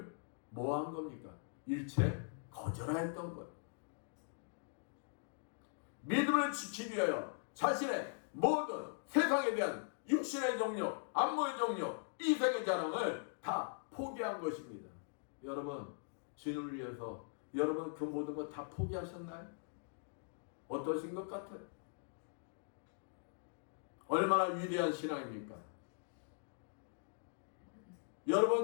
뭐 한 겁니까? 일체 거절하였던 거예요. 믿음을 지키기 위하여 자신의 모든 세상에 대한 육신의 정욕, 안목의 정욕, 이생의 자랑을 다 포기한 것입니다. 여러분, 주님을 위해서 여러분 그 모든 것 다 포기하셨나요? 어떠신 것 같아요? 얼마나 위대한 신앙입니까?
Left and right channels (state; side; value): silent; right; digital silence